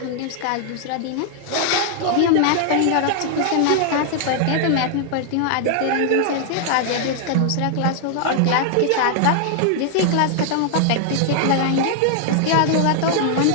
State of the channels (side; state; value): both; different; correlation 0.00